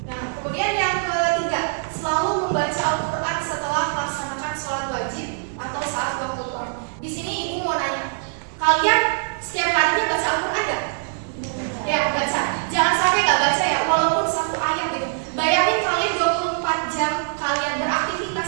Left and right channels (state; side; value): silent; left; digital silence